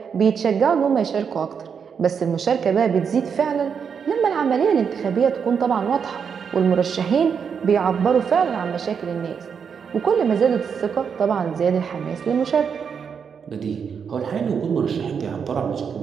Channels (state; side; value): quieter; left; 6.7 dB